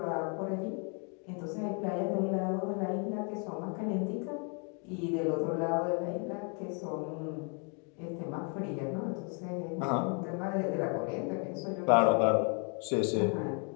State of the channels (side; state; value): right; quieter; 37.6 dB